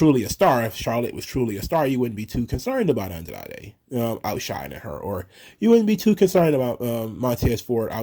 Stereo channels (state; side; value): identical; both; correlation 1.00